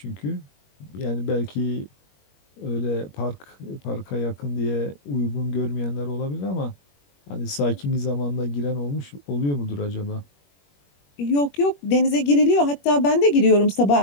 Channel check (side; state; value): right; late; 21 ms